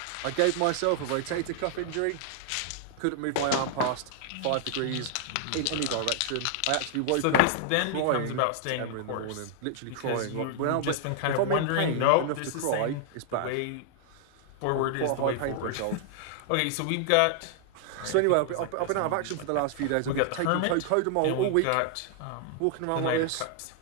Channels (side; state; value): both; different; correlation 0.00